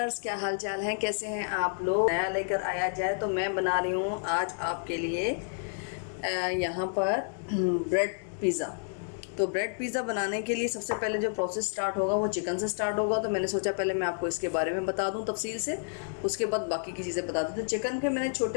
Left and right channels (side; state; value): right; silent; digital silence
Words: क्या हाल चाल हैं, कैसे हैं आप लोग। नया लेकर आया जाए तो मैं बना रही हूँ आज आपके लिए यहाँ पर ब्रेड पिज़्ज़ा। तो ब्रेड पिज़्ज़ा बनाने के लिए सबसे पहले जो प्रोसेस स्टार्ट होगा वो चिकन से स्टार्ट होगा। तो मैंने सोचा पहले मैं आपको इसके बारे में बता दूं तफसील से, उसके बाद बाकी की चीज़ें बता दूं। तो चिकन के मैंने